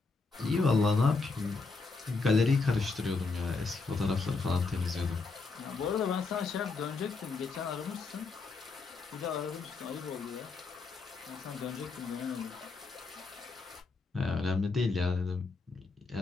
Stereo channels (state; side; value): quieter; right; 4.1 dB